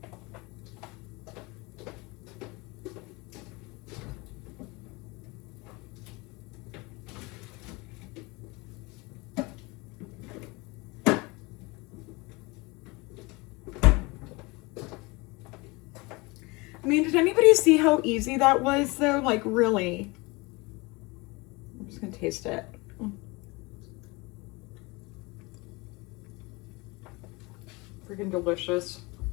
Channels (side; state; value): right; quieter; 25.3 dB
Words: I mean, did anybody see how easy that was though? Like really. I'm just gonna taste it. Freaking delicious.